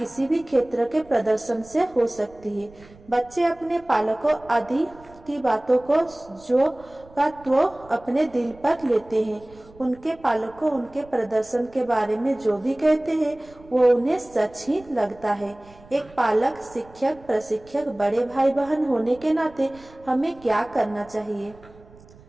भी क्षेत्र के प्रदर्शन से हो सकती है। बच्चे अपने पालकों आदि की बातों को तो अपने दिल पर लेते हैं। उनके पालकों उनके प्रदर्शन के बारे में जो भी कहते हैं वो उन्हें सच ही लगता है। एक पालक, शिक्षक, प्रशिक्षक, बड़े भाई बहन होने के नाते हमें क्या करना चाहिए?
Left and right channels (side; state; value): right; noise; rumble, 24 dB below the sound